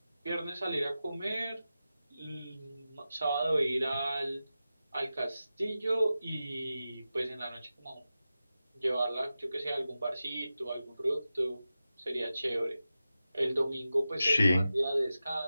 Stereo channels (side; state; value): both; inverted; correlation -0.93